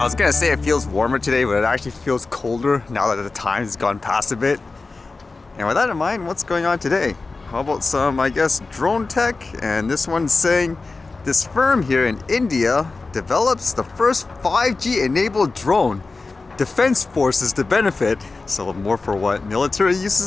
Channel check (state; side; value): quieter; right; 3.8 dB